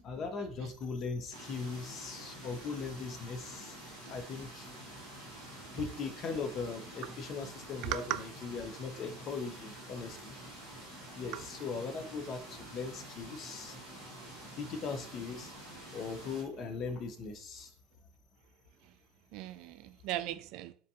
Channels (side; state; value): both; normal; correlation 0.45